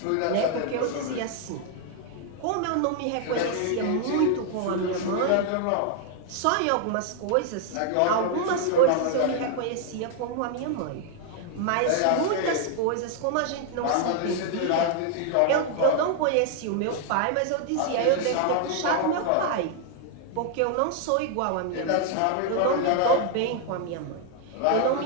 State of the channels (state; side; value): different; both; correlation 0.00